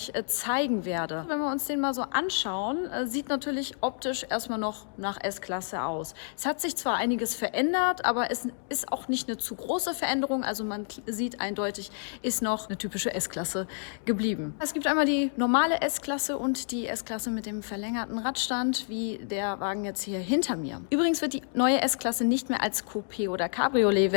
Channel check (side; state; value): right; silent; digital silence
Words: zeigen werde. Wenn wir uns den mal so anschauen, sieht natürlich optisch erstmal noch nach S-Klasse aus. Es hat sich zwar einiges verändert, aber es ist auch nicht eine zu große Veränderung. Also man sieht eindeutig, ist noch eine typische S-Klasse geblieben. Es gibt einmal die normale S-Klasse und die S-Klasse mit dem verlängerten Radstand, wie der Wagen jetzt hier hinter mir. Übrigens wird die neue S-Klasse nicht mehr als Coupé- oder